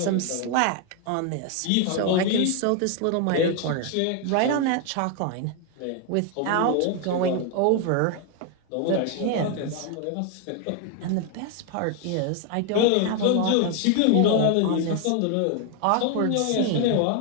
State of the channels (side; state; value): both; different; correlation 0.01